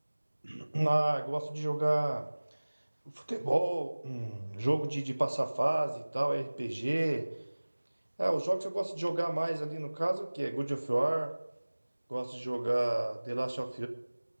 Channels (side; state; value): both; inverted; correlation -1.00